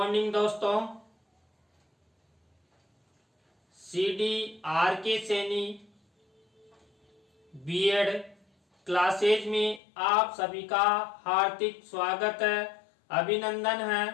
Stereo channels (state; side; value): drops out; right; at 9.8 s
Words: दोस्तों। CDRK Saini BEd classes में आप सभी का हार्दिक स्वागत है, अभिनंदन है।